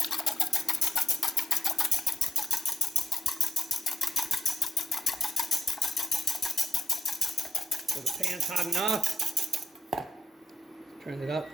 So the pan's hot enough. Turn it up.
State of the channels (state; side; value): normal; both; correlation 0.83